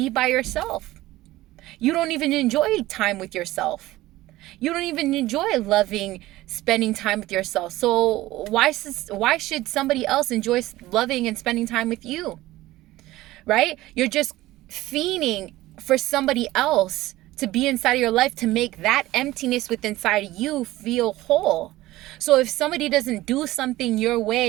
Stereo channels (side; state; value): left; quieter; 17.1 dB